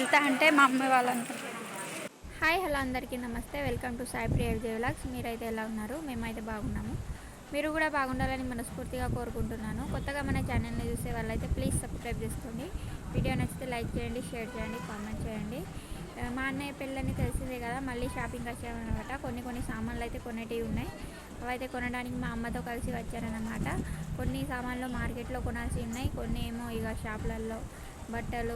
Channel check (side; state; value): both; identical; correlation 1.00